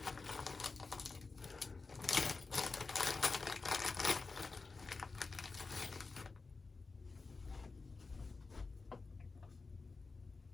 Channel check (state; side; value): quieter; right; 4.1 dB